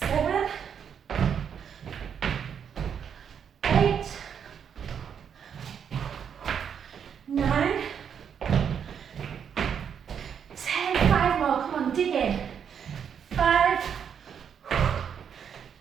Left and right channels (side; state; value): left; quieter; 7.7 dB